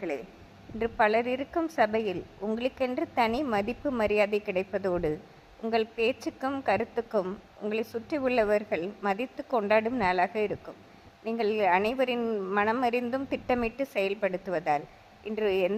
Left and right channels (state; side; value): identical; both; correlation 1.00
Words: இன்று பலர் இருக்கும் சபையில் உங்களுக்கென்று தனி மதிப்பு மரியாதை கிடைப்பதோடு உங்கள் பேச்சுக்கும் கருத்துக்கும் உங்களை சுற்றி உள்ளவர்கள் மதித்து கொண்டாடும் நாளாக இருக்கும். நீங்கள் அனைவரின் மனமறிந்தும் திட்டமிட்டு செயல்படுத்துவதால் இன்று